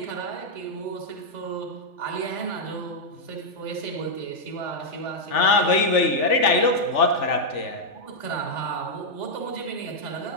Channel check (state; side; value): late; right; 3.4 ms